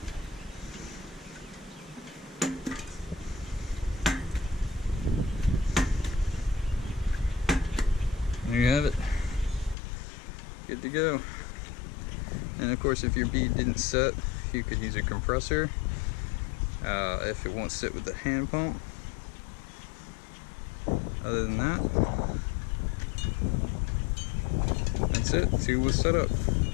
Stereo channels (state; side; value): drops out; right; at 9.8 s